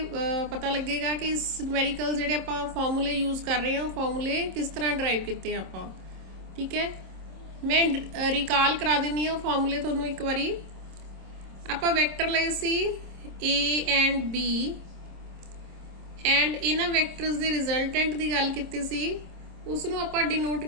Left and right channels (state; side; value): late; left; 26 ms